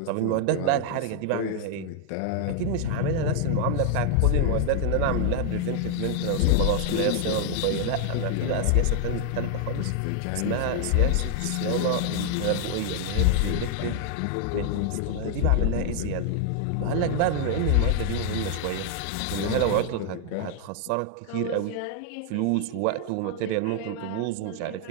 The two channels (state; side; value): different; both; correlation 0.00